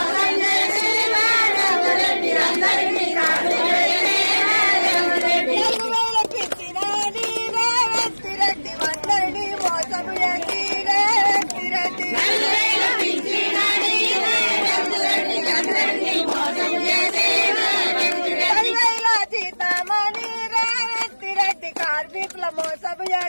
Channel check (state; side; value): inverted; both; correlation -1.00